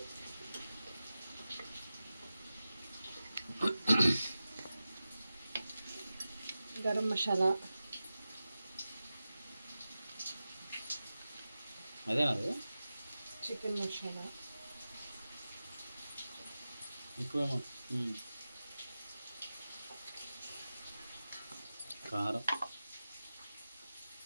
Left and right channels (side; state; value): both; inverted; correlation -0.94